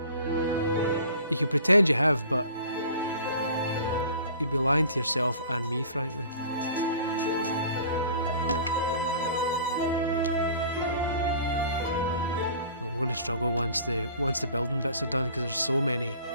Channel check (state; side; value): inverted; both; correlation -0.45